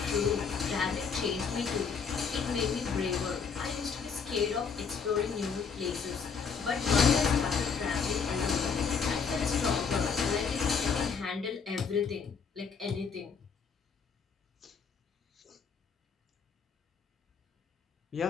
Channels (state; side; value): quieter; right; 5.8 dB